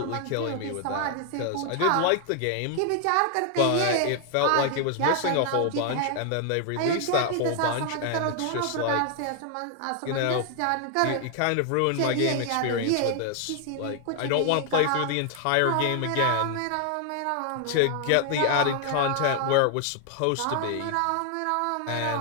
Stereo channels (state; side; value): different; both; correlation 0.00